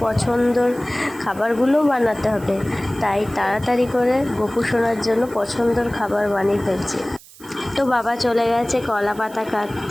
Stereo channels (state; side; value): noise; right; hiss, 22 dB below the sound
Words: পছন্দর খাবারগুলোও বানাতে হবে, তাই তাড়াতাড়ি করে গোপু সোনার জন্য পছন্দর খাবার বানিয়ে ফেলছি। তো বাবা চলে গেছে কলা পাতা